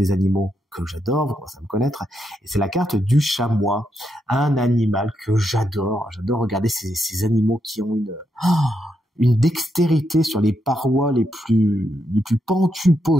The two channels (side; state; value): both; normal; correlation 0.81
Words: animaux que j'adore, vous commencez à me connaître, et c'est la carte du chamois, un animal que j'adore. J'adore regarder ces animaux qui ont une dextérité sur les parois les plus pentues